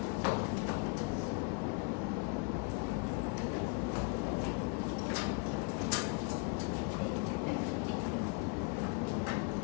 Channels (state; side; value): quieter; right; 35.7 dB